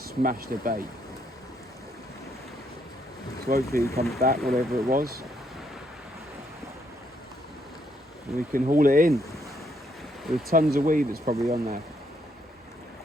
smash the bait. So hopefully it comes back, whatever it was, and we can haul it in. There's tons of weed that's probably on there.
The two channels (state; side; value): normal; both; correlation 0.73